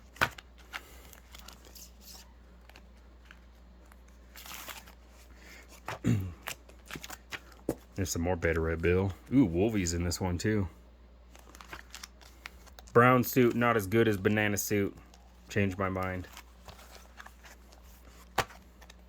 There's some more Beta Ray Bill. Ooh, Wolvie's in this one too. Brown suit, not as good as banana suit. Changed my mind.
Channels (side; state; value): both; identical; correlation 1.00